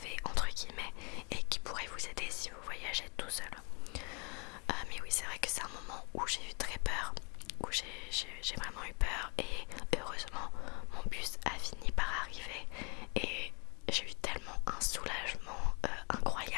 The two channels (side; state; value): right; quieter; 33.2 dB